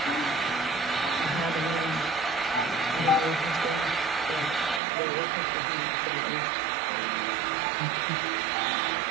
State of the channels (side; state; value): left; drops out; at 4.8 s